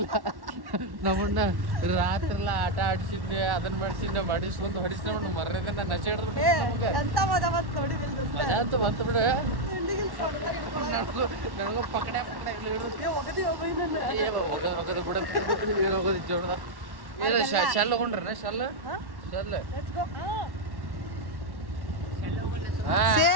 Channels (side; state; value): left; late; 1.1 ms